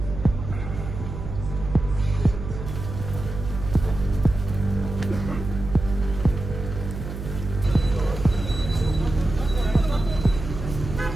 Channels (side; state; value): right; noise; hum, 8 dB below the sound